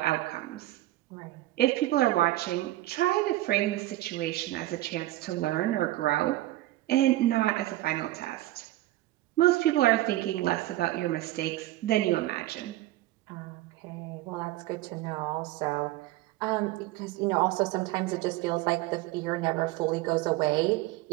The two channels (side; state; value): left; quieter; 16.5 dB